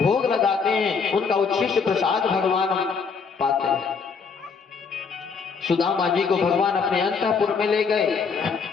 भोग लगाते हैं, उनका उच्छिष्ट प्रसाद भगवान पाते हैं। सुदामा जी को भगवान अपने अंतःपुर में ले गए।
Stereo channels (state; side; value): quieter; right; 5.5 dB